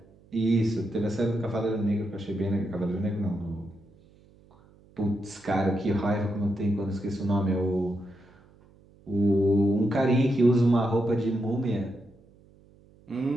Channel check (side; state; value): right; noise; hum, 28 dB below the sound